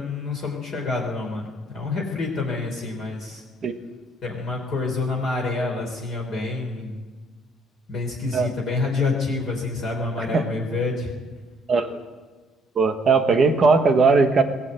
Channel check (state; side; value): normal; both; correlation 0.65